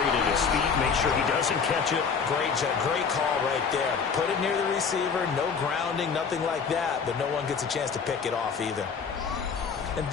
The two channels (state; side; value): quieter; right; 5.9 dB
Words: it at his feet, make sure he doesn't catch it. Great call right there. Put it near the receiver, no grounding, nothing like that, but no one gets a chance to pick it off either. And